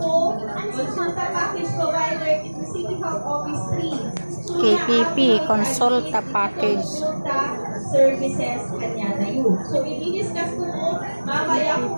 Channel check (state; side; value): inverted; both; correlation -1.00